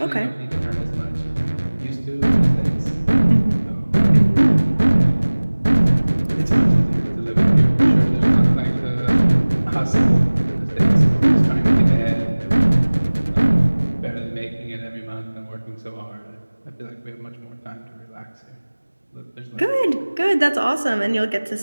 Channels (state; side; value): inverted; both; correlation -1.00